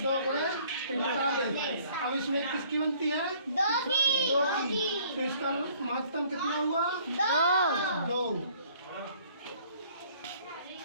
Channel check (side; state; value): both; inverted; correlation -0.58